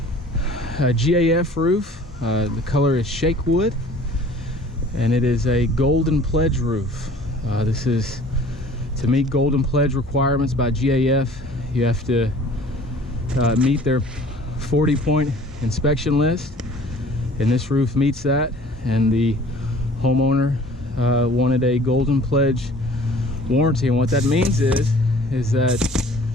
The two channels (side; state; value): both; normal; correlation 0.50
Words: GAF roof. The color is shake wood, and it is a golden pledge roof. This is to meet golden pledge requirements by GAF. You have to meet their 40-point inspection list, and this roof meets that. And the homeowner wanted a golden pledge warranty, and what that means is that